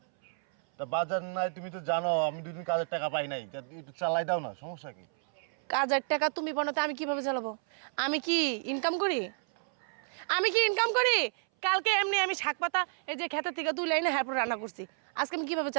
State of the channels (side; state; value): left; silent; 57 dB below the other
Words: তা বাজার নাই, তুমি তো জানো আমি 2 দিন কাজের টাকা পাই নাই, তা একটু চালাই দাও না, সমস্যা কি? কাজের টাকা তুমি বানাতে আমি কিভাবে চালাবো? আমি কি ইনকাম করি? আমি কি ইনকাম করি? কালকে এমনি আমি শাক পাতা এই যে ক্ষেতের থেকে তুলে এনে এরপর রান্না করছি, আজকে আমি কিভাবে